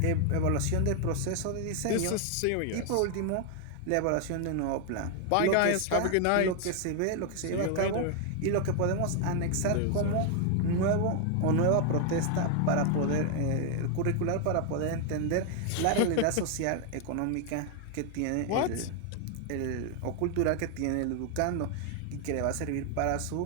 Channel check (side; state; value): both; different; correlation 0.00